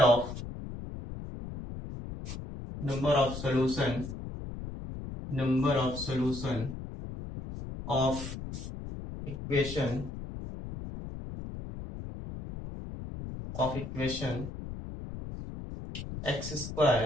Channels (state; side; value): noise; left; rumble, 9 dB below the sound